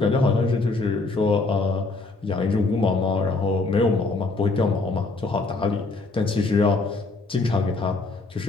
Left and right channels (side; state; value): right; quieter; 3.5 dB